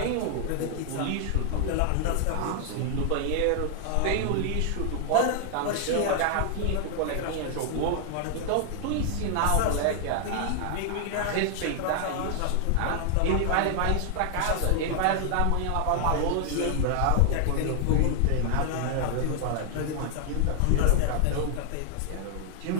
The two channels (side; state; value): both; different; correlation 0.00